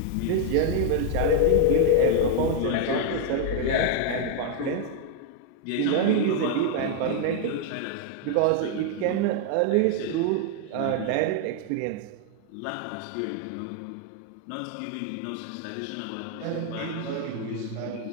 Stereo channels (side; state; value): both; different; correlation 0.01